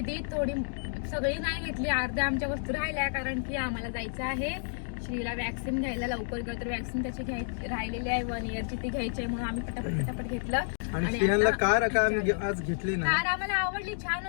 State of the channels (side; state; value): right; silent; digital silence